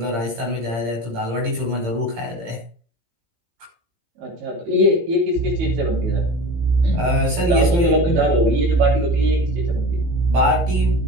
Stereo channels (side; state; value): left; late; 17 ms